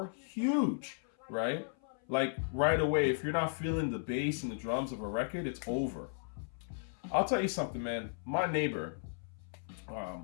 huge, right? Like right away, if you're not feeling the bass and the drums of a record, it's over. I'll tell you something, man. My neighbor,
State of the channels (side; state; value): right; silent; 54 dB below the other